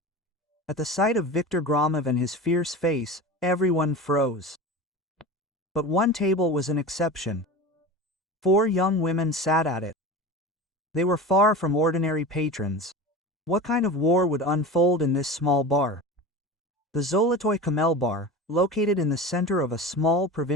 At the sight of Viktor Gromov and his fierce face, everyone froze. But one table was an exception. 4 young women sat at it. They were far from ordinary patrons. What kind of war would unfold in this small bar? The Zolotoy Kamel bar, located in the center of a small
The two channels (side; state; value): both; normal; correlation 0.31